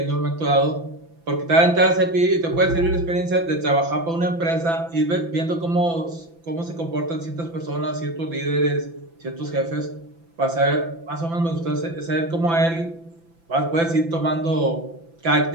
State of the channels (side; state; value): left; late; 6.0 ms